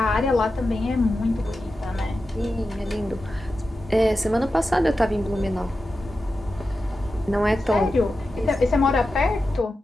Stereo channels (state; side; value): normal; both; correlation 0.91